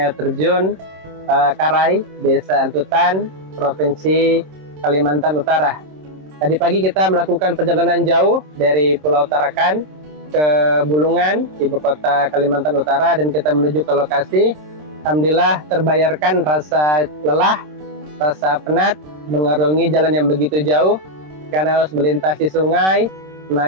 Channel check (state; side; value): late; left; 26 ms